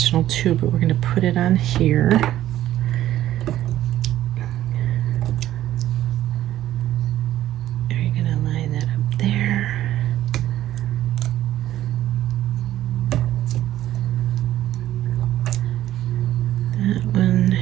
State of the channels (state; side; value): quieter; left; 13.2 dB